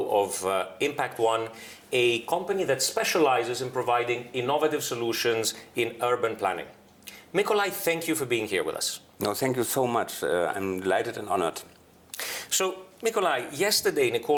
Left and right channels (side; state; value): both; identical; correlation 1.00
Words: of Impact One, a company that specializes in providing innovative solutions in urban planning. Mikolaj, thank you for being here with us. No, thank you so much. I'm delighted and honored. So, Mikolaj, yesterday